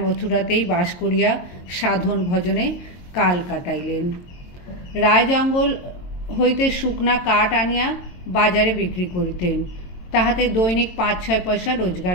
মথুরাতেই বাস করিয়া সাধন ভজনে কাল কাটাইলেন। রায় জঙ্গল হইতে শুকনা কাঠ আনিয়া বাজারে বিক্রি করিতেন। তাহাতে দৈনিক ৫-৬ পয়সা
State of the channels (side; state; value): right; late; 22 ms